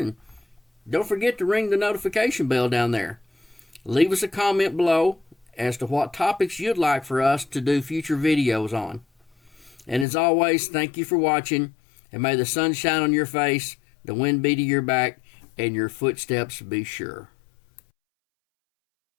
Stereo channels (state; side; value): drops out; right; at 10.1 s